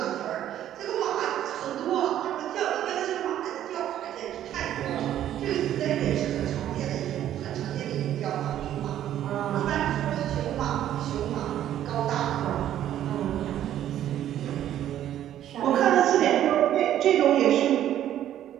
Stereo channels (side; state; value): left; quieter; 11.6 dB